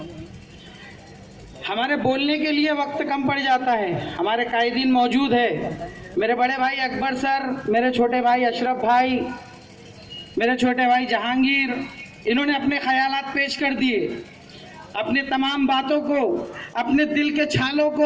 हमारे बोलने के लिए वक्त कम पड़ जाता है। हमारे कायदीन मौजूद है, मेरे बड़े भाई अकबर सर, मेरे छोटे भाई अशरफ भाई, मेरे छोटे भाई जहांगीर, इन्होंने अपने ख्यालात पेश कर दिए, अपने तमाम बातों को, अपने दिल के छालों को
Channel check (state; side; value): identical; both; correlation 1.00